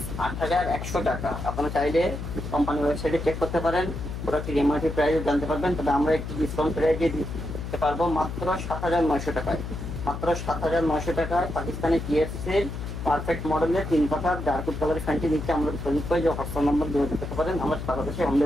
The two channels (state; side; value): noise; left; hum, 6 dB below the sound